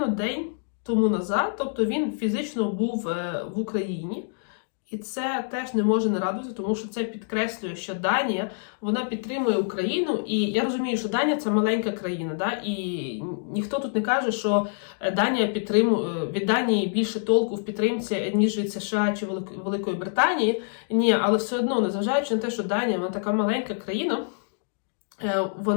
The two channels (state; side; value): silent; right; digital silence